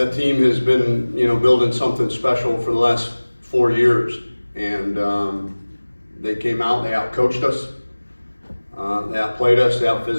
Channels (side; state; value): both; inverted; correlation -1.00